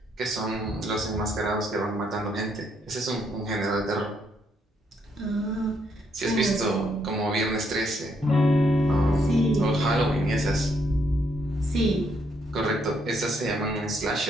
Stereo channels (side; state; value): both; normal; correlation 0.73